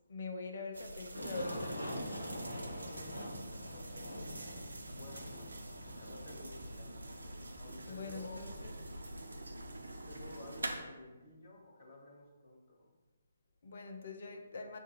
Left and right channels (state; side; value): inverted; both; correlation -0.80